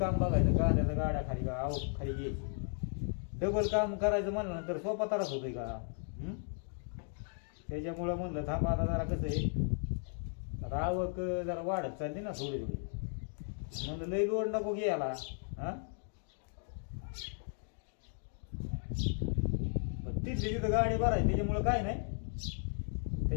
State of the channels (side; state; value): right; silent; 54 dB below the other